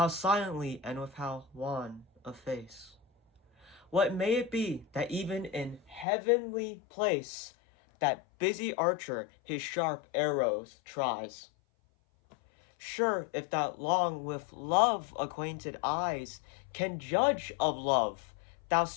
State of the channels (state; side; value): drops out; right; at 6.1 s